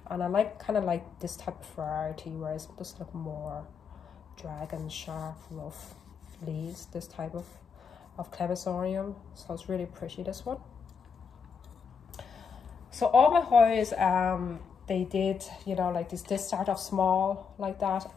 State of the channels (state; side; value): quieter; right; 5.9 dB